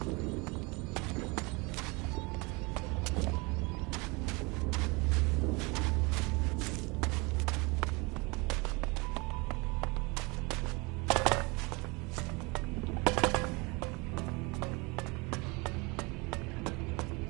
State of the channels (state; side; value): quieter; left; 27.2 dB